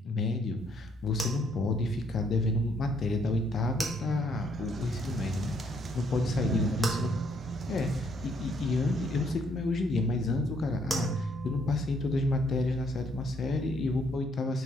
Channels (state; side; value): normal; both; correlation 0.69